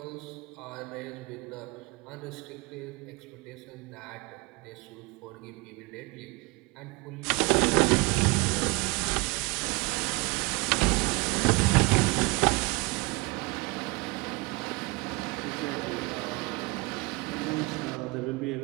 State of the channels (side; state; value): left; quieter; 25.6 dB